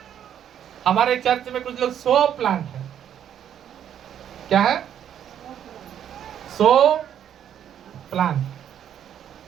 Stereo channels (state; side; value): quieter; left; 9.7 dB